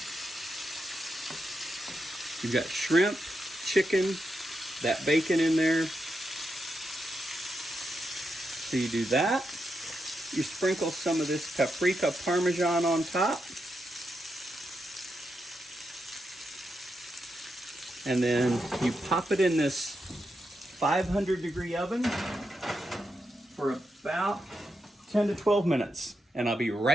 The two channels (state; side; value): normal; both; correlation 0.85